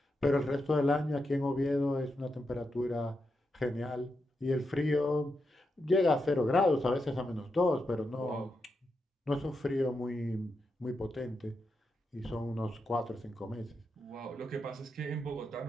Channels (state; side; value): normal; both; correlation 0.85